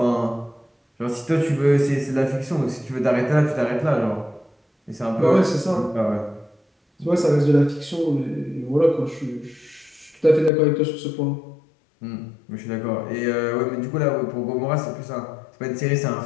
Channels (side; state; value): right; drops out; at 10.5 s